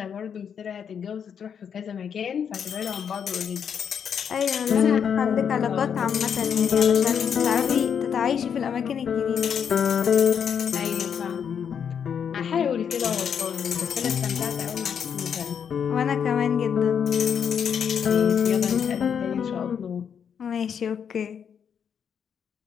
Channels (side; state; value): right; quieter; 7.6 dB